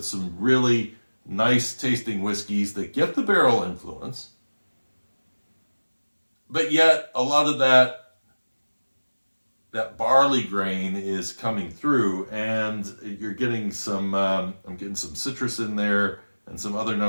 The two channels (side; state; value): both; inverted; correlation -1.00